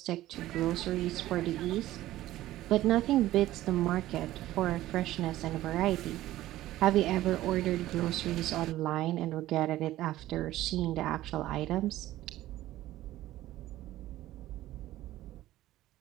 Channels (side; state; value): left; quieter; 15.1 dB